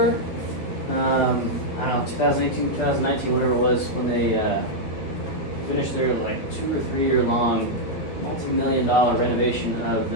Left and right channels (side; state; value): right; late; 13 ms